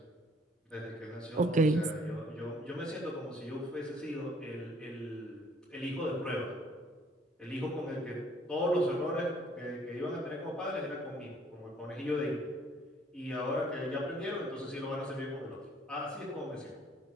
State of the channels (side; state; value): both; normal; correlation 0.60